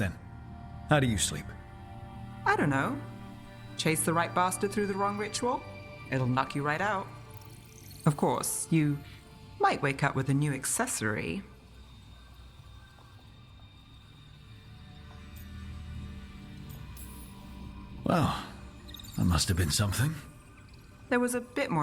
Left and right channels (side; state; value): both; identical; correlation 1.00